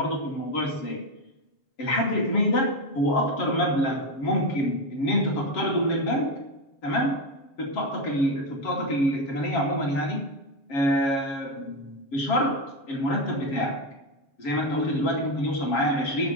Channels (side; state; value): right; late; 7.3 ms